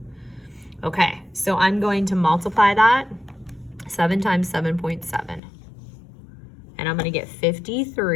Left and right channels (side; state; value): right; drops out; at 5.4 s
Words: Okay, so I'm going to multiply that, 7 times 7.7. And I'm gonna get